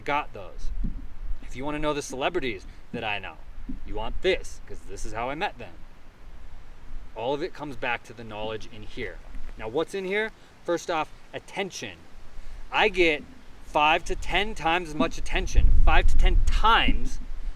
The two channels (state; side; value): identical; both; correlation 1.00